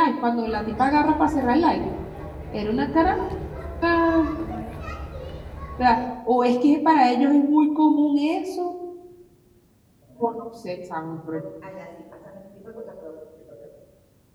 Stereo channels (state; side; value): identical; both; correlation 1.00